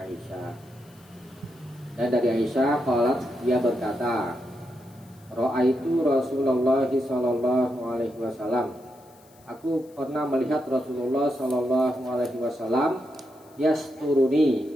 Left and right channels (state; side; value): noise; left; hiss, 29 dB below the sound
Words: Dan dari Aisyah qalat, dia berkata, ra'aitu Rasulullah sallallahu alaihi wasallam. Aku pernah melihat Rasulullah sallallahu alaihi wasallam yasturuni,